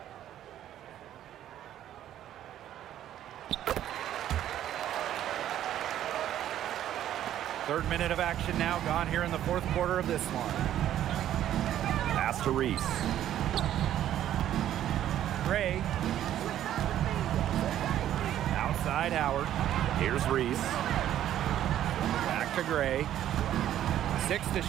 Third minute of action now gone here in the fourth quarter of this one. Pass to Reese. Gray. Outside Howard. Here's Reese. Back to Gray. 6 to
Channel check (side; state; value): left; quieter; 11.7 dB